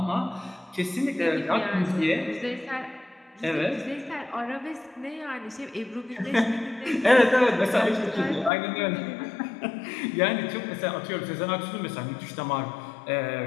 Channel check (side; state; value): right; drops out; at 8.5 s